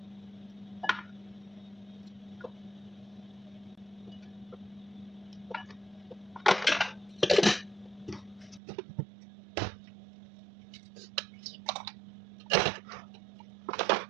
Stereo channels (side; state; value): left; drops out; at 8.6 s